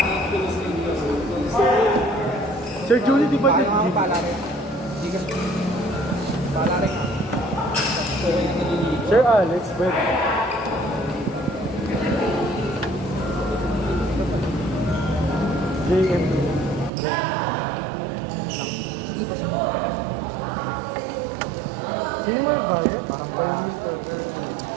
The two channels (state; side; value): drops out; left; at 16.9 s